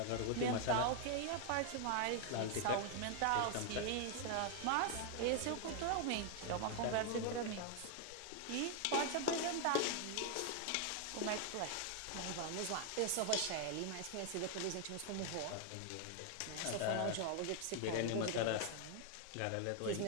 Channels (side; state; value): both; different; correlation 0.00